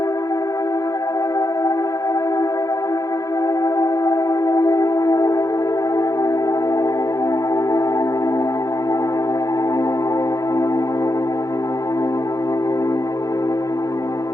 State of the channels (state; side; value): late; right; 0.17 ms